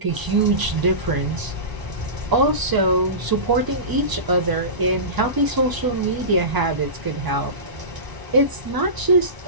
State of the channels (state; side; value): late; left; 1.0 ms